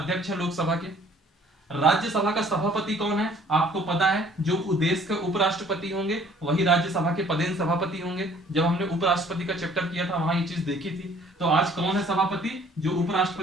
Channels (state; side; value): normal; both; correlation 0.56